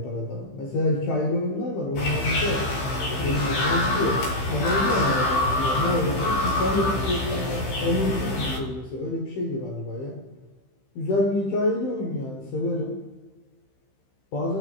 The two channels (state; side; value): late; right; 15 ms